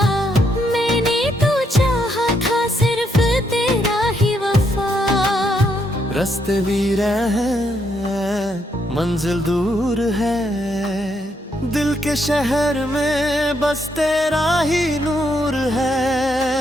मैंने तो चाहा था सिर्फ तेरा ही वफा। रास्ते वीर हैं, मंजिल दूर है, दिल के शहर में बस तेरा ही नूर है।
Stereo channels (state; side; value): normal; both; correlation 0.76